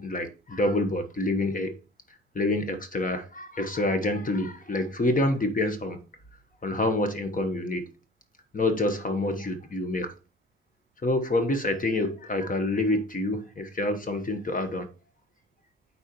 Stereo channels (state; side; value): normal; both; correlation 0.45